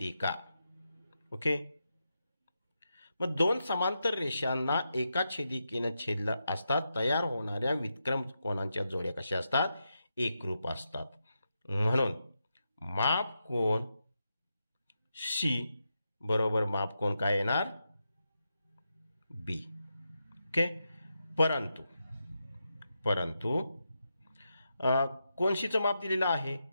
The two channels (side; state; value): both; inverted; correlation -0.86